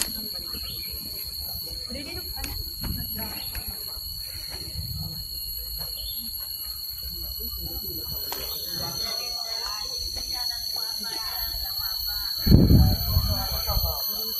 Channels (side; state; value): both; identical; correlation 1.00